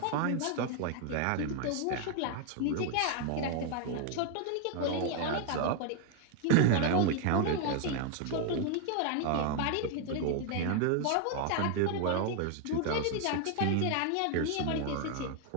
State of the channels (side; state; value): both; different; correlation 0.00